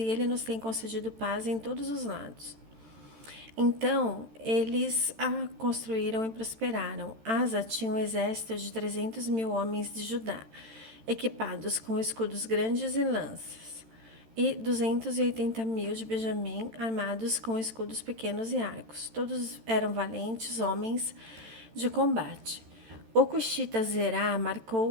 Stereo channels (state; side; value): late; left; 13 ms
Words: ele nos tem concedido paz em todos os lados. Então, eles a construíram e prosperaram. Asa tinha um exército de 300.000 homens de Judá, equipados com escudos grandes e lanças, e 280.000 de Benjamim, armados com escudos pequenos e arcos. Todos eram valentes homens de combate. O cuxita Zerá